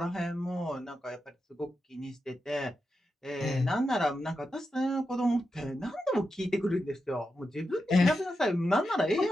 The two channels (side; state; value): both; normal; correlation 0.88